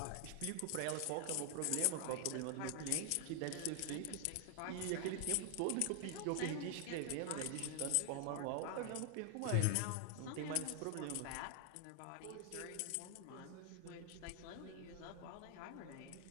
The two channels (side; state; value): both; different; correlation 0.00